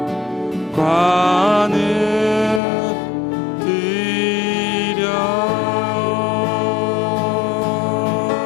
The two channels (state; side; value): drops out; right; at 2.6 s